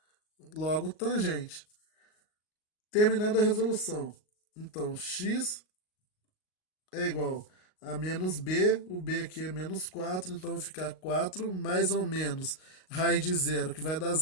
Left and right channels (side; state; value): right; late; 38 ms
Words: Logo, tangente. Terminando a resolução. Então, x é igual a menos b, o b aqui é menos 4, então vai ficar 4 mais ou menos raiz de zero, que vai dar